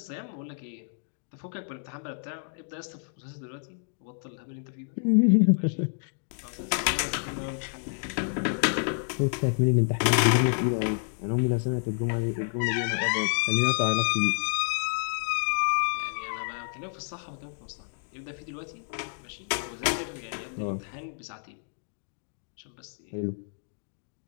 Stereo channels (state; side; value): silent; right; digital silence